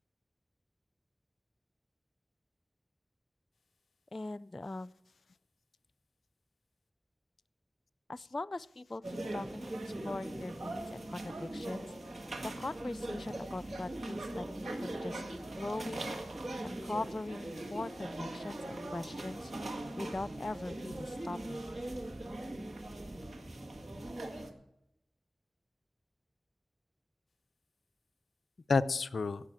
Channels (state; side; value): normal; both; correlation 0.93